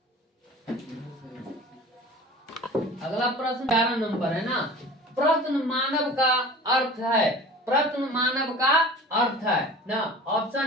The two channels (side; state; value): both; normal; correlation 0.40